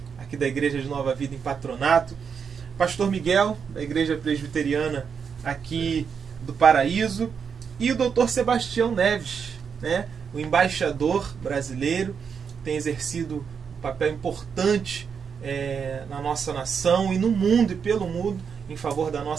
aqui da Igreja de Nova Vida em Patronato, pastor Miguel, da Igreja Presbiteriana aqui do Paraíso, e o doutor Sebastião Neves, né, o embaixador brasileiro, tem exercido um papel importante na nossa nação e no mundo e pelo mundo em favor da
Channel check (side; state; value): left; quieter; 6.6 dB